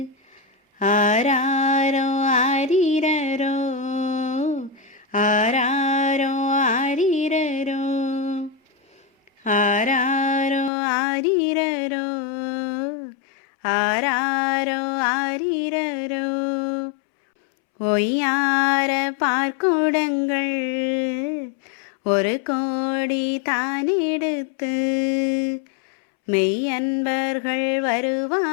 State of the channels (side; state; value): right; drops out; at 10.7 s